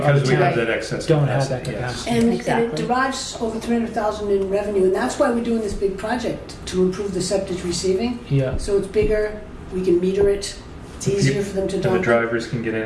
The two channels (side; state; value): both; identical; correlation 1.00